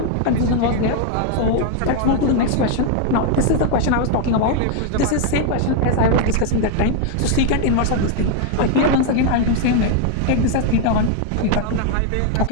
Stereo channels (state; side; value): different; both; correlation 0.00